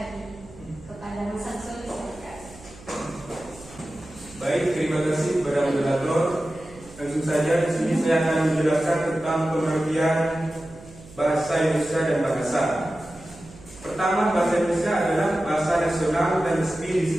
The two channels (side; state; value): right; noise; hum, 20 dB below the sound